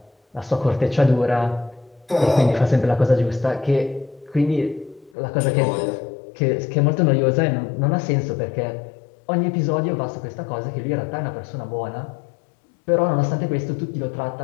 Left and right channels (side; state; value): right; drops out; at 5.1 s